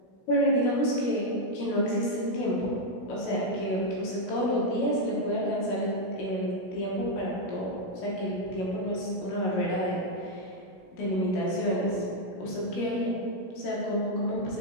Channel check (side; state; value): right; late; 16 ms